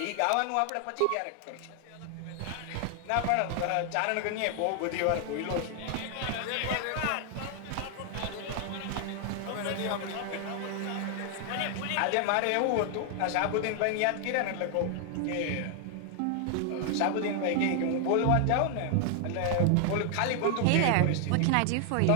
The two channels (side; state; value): both; different; correlation 0.00